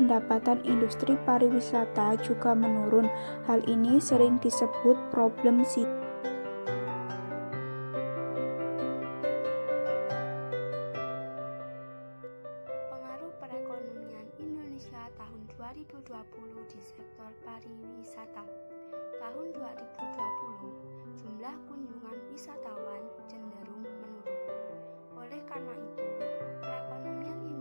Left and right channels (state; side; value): inverted; both; correlation -1.00